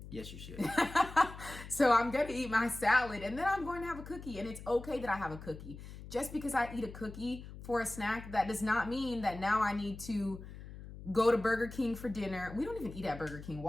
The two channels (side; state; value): left; noise; hum, 13 dB below the sound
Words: Yes, you should. So I'm going to eat my salad, and then I'm going to have a cookie. And it's okay that I have a cookie. Just because I eat a cookie for a snack, that does not mean that now I need to go to Burger King for dinner. We don't even eat at Burger King.